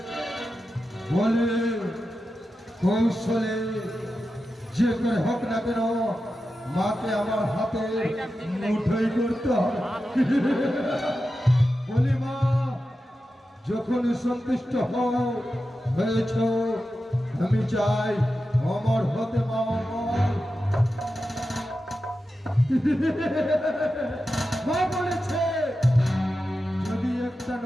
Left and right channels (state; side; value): normal; both; correlation 0.91